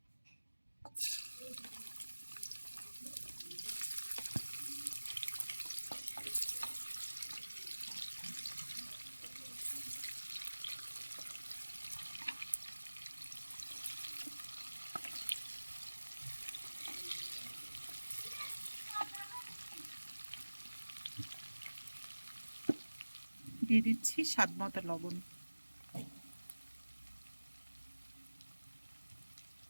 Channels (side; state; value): both; inverted; correlation -1.00